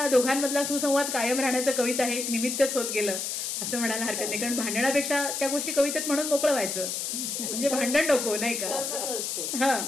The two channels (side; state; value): left; noise; hiss, 3 dB below the sound